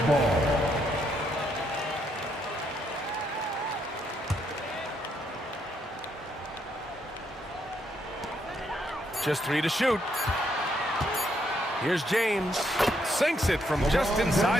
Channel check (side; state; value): both; normal; correlation 0.75